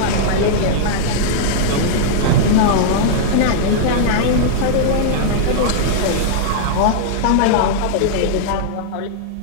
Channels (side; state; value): both; different; correlation -0.01